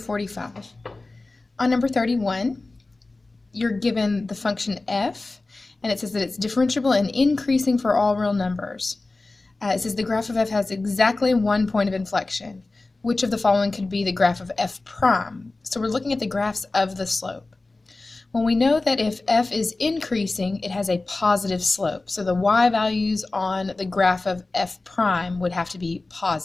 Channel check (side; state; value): right; quieter; 3.2 dB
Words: On number 31, you're given the function f, and it says that it's differentiable and increasing for all real numbers. It says the graph of f has exactly 1 point of inflection. Which of the following could be the graph of f prime? So we're looking at the graphs of the slope. Well, we know that if f is increasing, it has a positive slope. So the y values on the graph of f prime would have to be